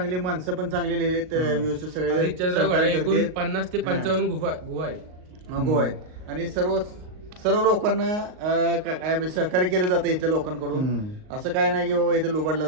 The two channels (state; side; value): late; left; 38 ms